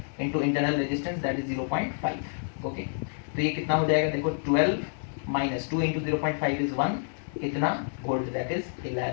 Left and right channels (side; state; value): right; silent; 59 dB below the other